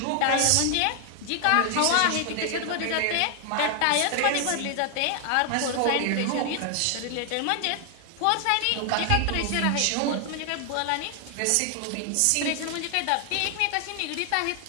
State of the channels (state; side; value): different; both; correlation 0.00